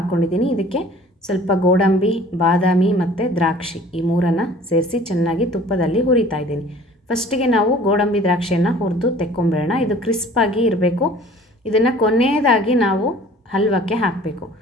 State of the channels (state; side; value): normal; both; correlation 0.49